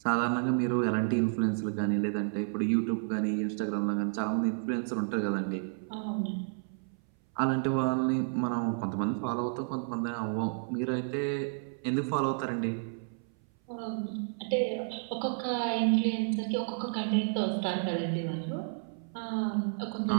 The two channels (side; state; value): left; silent; 57 dB below the other